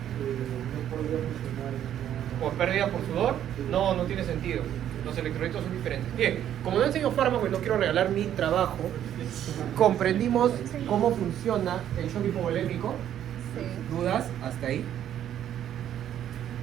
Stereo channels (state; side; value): quieter; left; 10.7 dB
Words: no podría funcionar en una... ¿Por pérdida por sudor? No, no tiene sentido. Los electrolitos son diferentes. Bien, como no enseño fármaco y no quiero regalar mi trabajo, comprendimos cómo funciona el shock hipovolémico. Sí. ¿Dudas? ¿Hasta ahí?